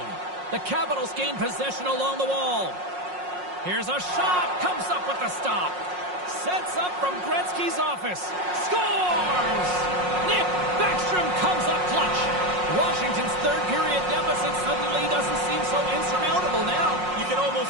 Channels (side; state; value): left; late; 5.5 ms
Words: The Capitals gain possession along the wall. Here's a shot. Comes up with the stop. Sets up from Gretzky's office. Scores! Nick Backstrom comes up clutch. Washington's third period deficit suddenly doesn't seem so insurmountable now. You can